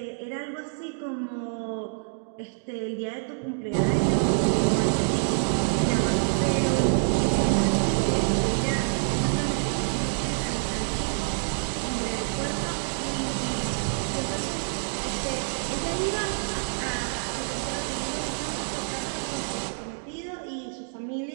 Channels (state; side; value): silent; left; digital silence